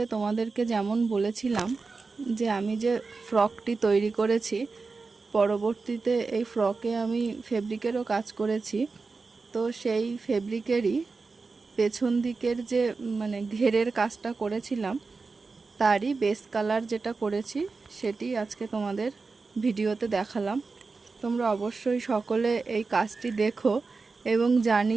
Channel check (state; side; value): quieter; left; 4.2 dB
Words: তোমাদেরকে যেমন বলেছিলাম যে আমি যে ফ্রকটি তৈরি করেছি, পরবর্তীতে এই ফ্রকে আমি ফেব্রিকেরও কাজ করেছি। তো সেই ফেব্রিকেরই পেছন দিকের যে ঘেরের কাজটা করেছিলাম, তারই বেস কালার যেটা করেছি সেটি আজকে তোমাদের ভিডিওতে দেখালাম। তোমরা অবশ্যই সকলে এই কাজটি দেখো এবং